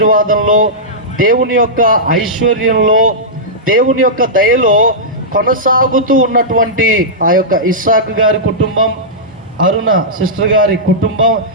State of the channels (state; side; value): normal; both; correlation -0.13